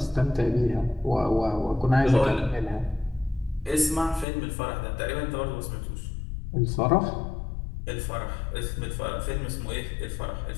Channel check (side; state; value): right; drops out; at 4.2 s